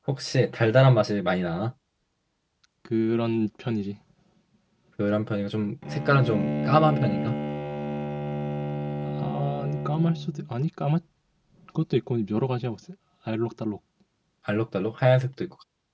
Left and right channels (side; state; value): both; identical; correlation 1.00